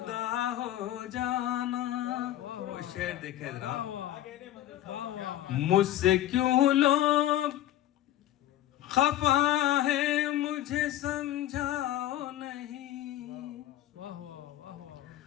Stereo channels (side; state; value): right; quieter; 13.5 dB